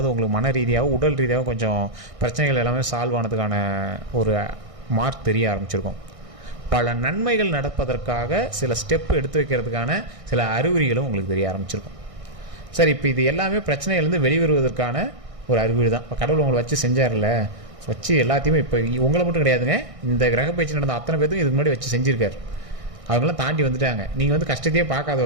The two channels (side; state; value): left; late; 1.6 ms